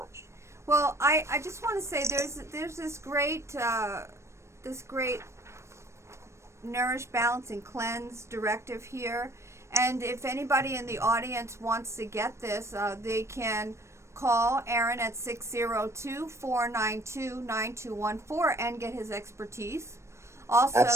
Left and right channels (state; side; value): late; left; 0.13 ms